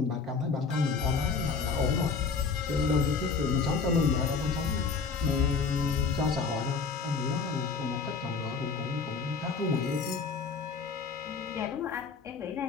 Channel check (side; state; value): right; quieter; 5.0 dB